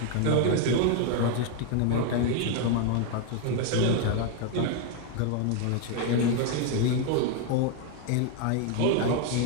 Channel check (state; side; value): different; both; correlation 0.01